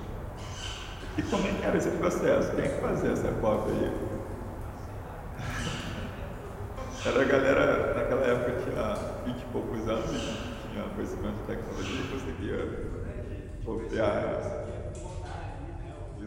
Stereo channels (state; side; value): identical; both; correlation 1.00